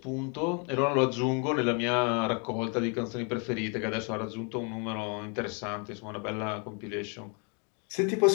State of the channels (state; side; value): quieter; right; 35.9 dB